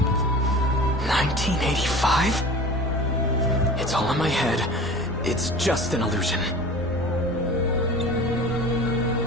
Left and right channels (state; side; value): normal; both; correlation 0.39